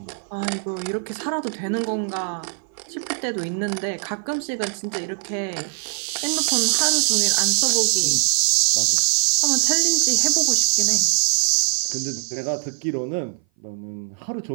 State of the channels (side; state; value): left; silent; 58 dB below the other